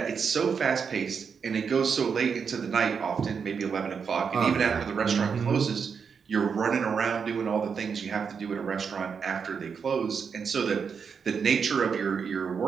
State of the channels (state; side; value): quieter; left; 6.2 dB